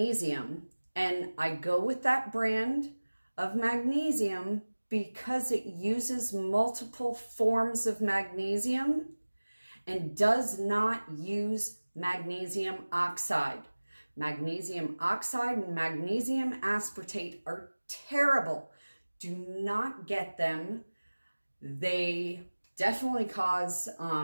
and I go with that brand of magnesium because it uses multiple forms of magnesium and does not use magnesium oxide. Magnesium oxide and magnesium aspartate are terrible. Do not get them. They definitely cause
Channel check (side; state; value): both; inverted; correlation -1.00